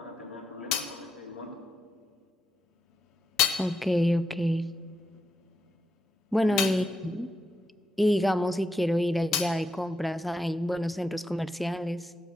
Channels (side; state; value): both; normal; correlation 0.84